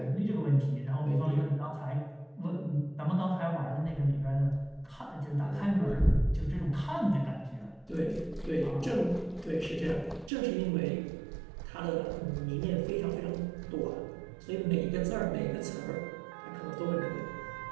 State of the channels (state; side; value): drops out; left; at 10.3 s